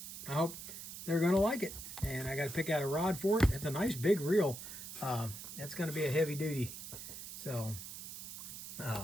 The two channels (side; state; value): right; noise; hiss, 10 dB below the sound